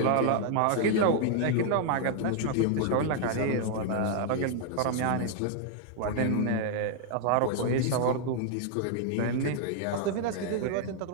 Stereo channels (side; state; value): both; different; correlation -0.01